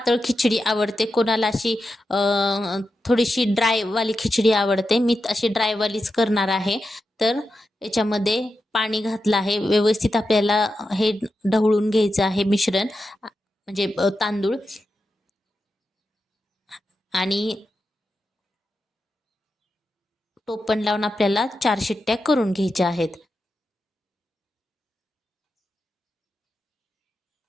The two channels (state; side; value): normal; both; correlation 0.89